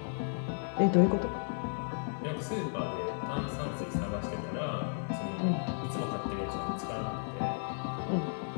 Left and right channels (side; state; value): right; silent; 55 dB below the other